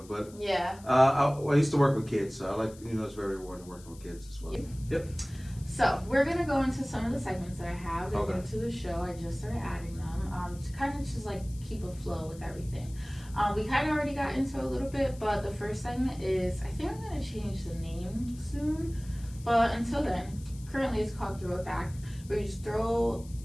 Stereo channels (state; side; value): noise; left; hiss, 22 dB below the sound